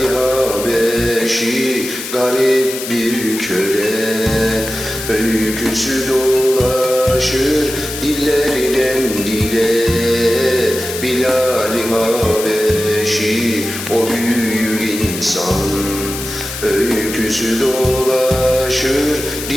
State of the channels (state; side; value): noise; left; hiss, 8 dB below the sound